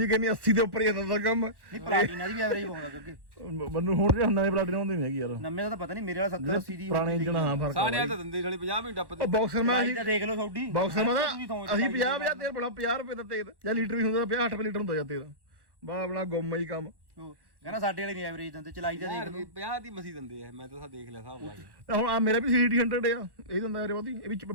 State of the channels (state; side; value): late; left; 1.1 ms